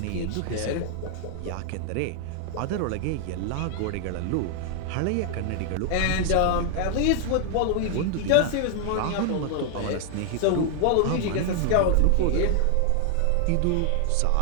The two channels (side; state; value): both; different; correlation 0.00